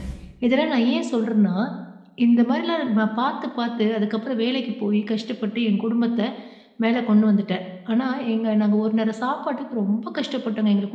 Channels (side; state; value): both; identical; correlation 1.00